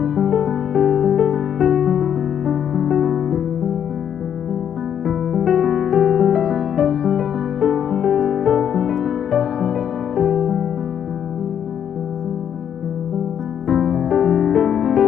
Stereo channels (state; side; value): quieter; right; 8.9 dB